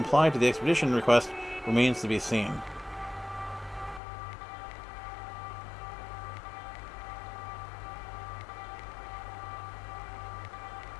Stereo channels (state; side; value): drops out; right; at 4.0 s